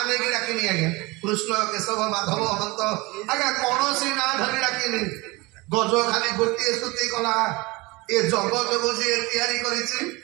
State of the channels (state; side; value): quieter; left; 23.8 dB